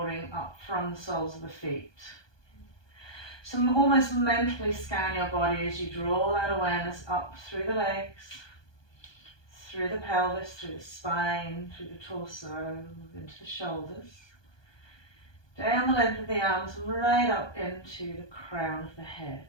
up from the soles of the feet. So almost mentally scan your body as you draw that awareness up through the legs, through the pelvis, through the spine, through the torso, into the shoulders, down the length of the arms, right up into the crown of the head.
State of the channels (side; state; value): right; late; 1.2 ms